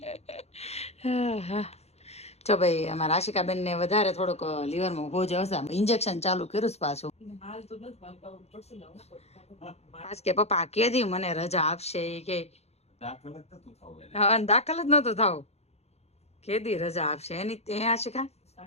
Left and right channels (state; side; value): late; right; 0.31 ms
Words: જો ભાઈ અમારા આશિકાબેન ને વધારે થોડુંક લીવરમાં હોજ આવશે. ઇન્જેક્શન ચાલુ કર્યું પાછું. આજ કે પપ્પા કેદી મને રજા આપશે કે દાખલ જ નતો થવું. કેદી રજા આપશે એની ત્યાં આશિકા?